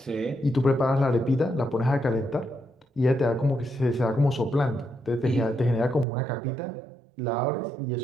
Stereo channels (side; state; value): left; drops out; at 6.1 s